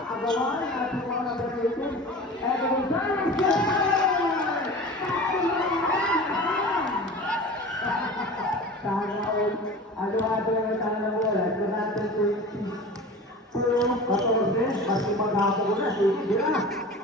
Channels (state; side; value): normal; both; correlation 0.36